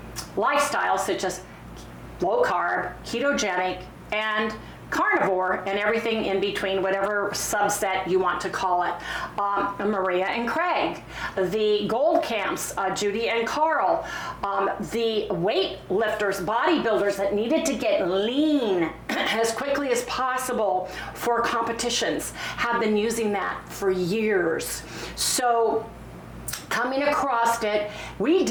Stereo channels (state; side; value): identical; both; correlation 1.00